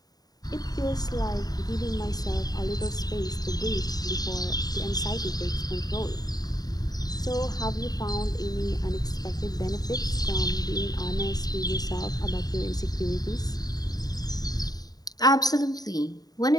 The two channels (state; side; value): late; right; 0.18 ms